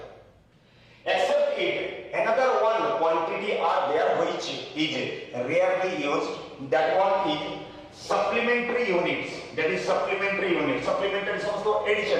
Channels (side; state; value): both; identical; correlation 1.00